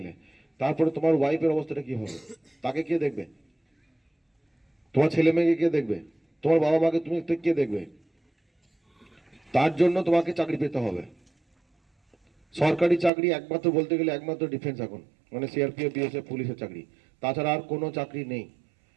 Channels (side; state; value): left; drops out; at 13.1 s